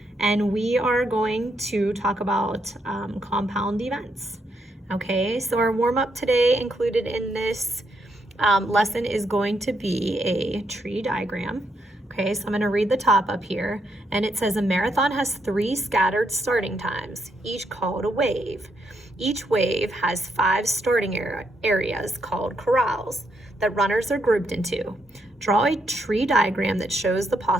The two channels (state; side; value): normal; both; correlation 0.77